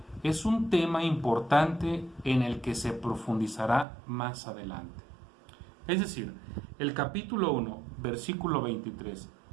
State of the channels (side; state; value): left; drops out; at 3.9 s